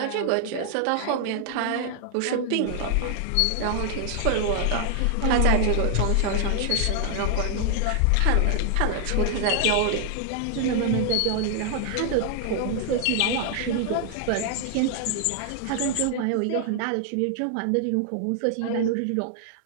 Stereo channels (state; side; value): different; both; correlation 0.00